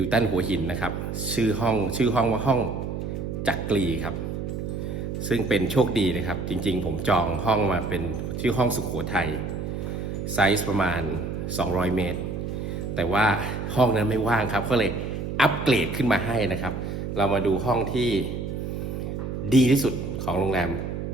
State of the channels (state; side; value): noise; right; hum, 4 dB below the sound